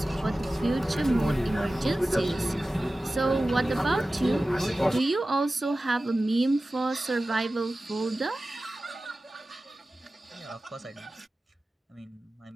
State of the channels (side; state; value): both; normal; correlation 0.95